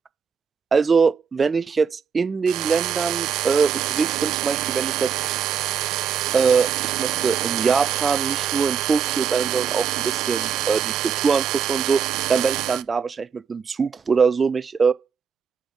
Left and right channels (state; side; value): quieter; left; 6.5 dB